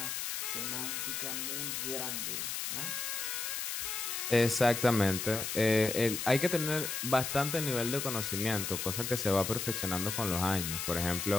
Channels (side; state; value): left; noise; hiss, 3 dB below the sound